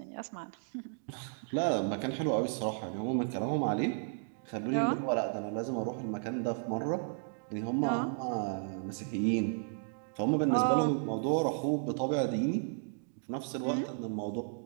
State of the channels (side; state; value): left; silent; digital silence